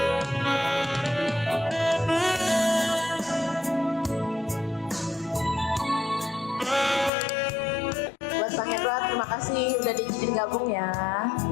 Buat Bang Edward, terima kasih udah diizinin gabung ya.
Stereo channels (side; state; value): right; drops out; at 7.1 s